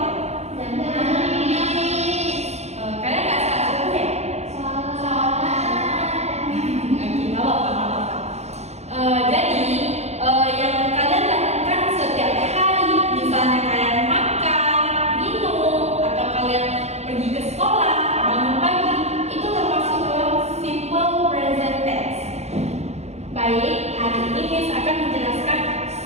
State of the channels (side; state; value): left; late; 0.32 ms